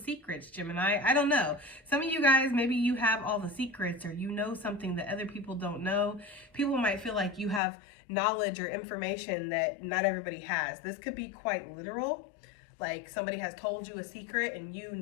Gemini. I don't know. Some of you guys, maybe you have all the secrets, or you know something that other people don't know. People might feel like you have knowledge or information that not everybody has. This could be quite literal. Like, somebody has told you a secret and you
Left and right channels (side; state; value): right; drops out; at 7.6 s